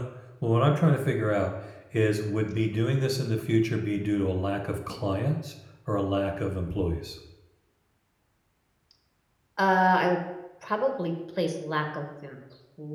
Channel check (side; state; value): both; identical; correlation 1.00